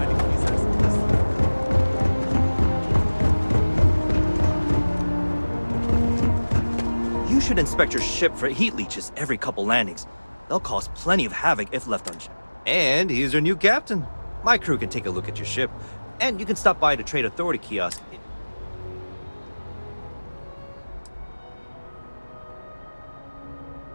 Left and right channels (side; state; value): both; inverted; correlation -1.00